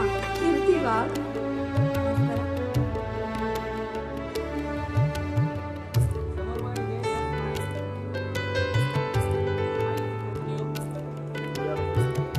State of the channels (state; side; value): identical; both; correlation 1.00